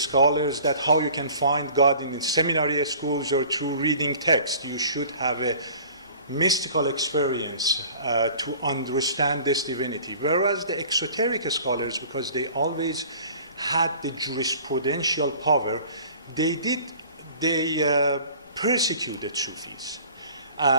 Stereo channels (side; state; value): both; inverted; correlation -0.47